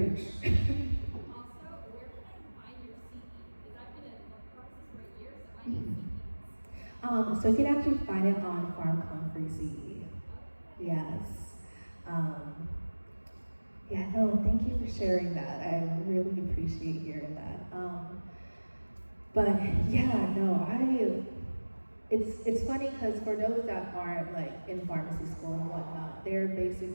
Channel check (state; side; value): inverted; both; correlation -1.00